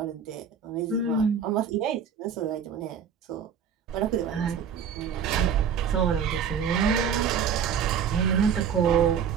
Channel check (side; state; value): left; quieter; 7.3 dB